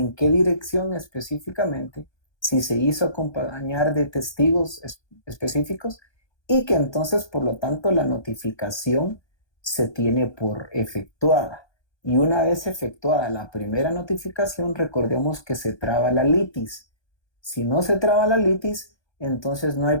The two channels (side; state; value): right; late; 1.2 ms